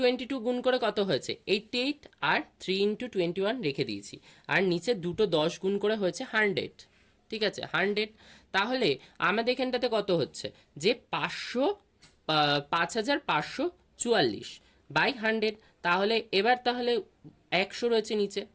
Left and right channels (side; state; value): both; identical; correlation 1.00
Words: গুণ করে কত হয়েছে 88, আর 3 ইন্টু 21 রেখে দিয়েছি, আর নিচে দুটো 10 গুণ করে হয়েছে 100। ঠিক আছে, 100, তাহলে আমাদের এখানটাতে কত হচ্ছে, যে 5544 বাই 100। তাহলে এবার 100 রয়েছে নিচে,